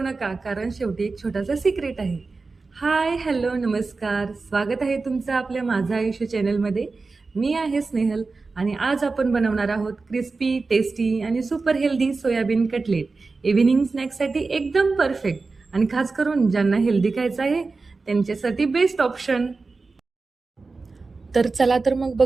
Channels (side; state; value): left; quieter; 4.0 dB